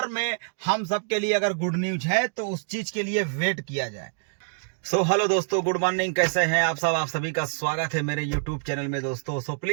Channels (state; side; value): silent; left; digital silence